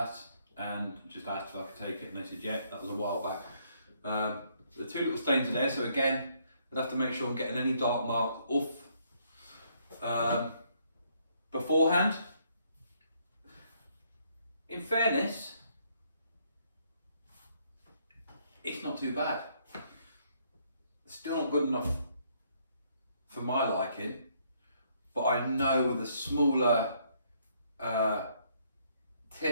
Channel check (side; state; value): both; inverted; correlation -0.69